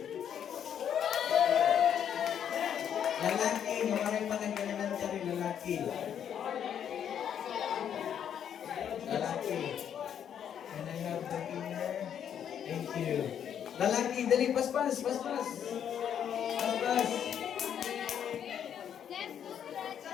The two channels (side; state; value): right; quieter; 9.0 dB